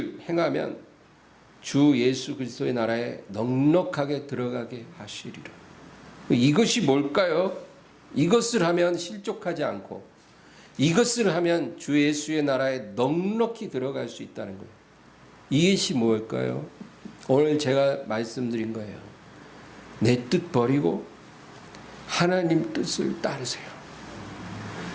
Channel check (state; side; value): identical; both; correlation 1.00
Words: 행하면 주 예수 그리스도의 나라에 넉넉하게 들어가게 하시리라. 이것이 뭘까요? 이것을 하면 실족하지 않고 이것을 하면 주 예수의 나라에 넉넉히 들어갈 수 있다는 거예요. 이것이 뭘까요? 오늘 제가 말씀드린 거예요. 내 뜻 버리고 하나님 뜻을 따르세요.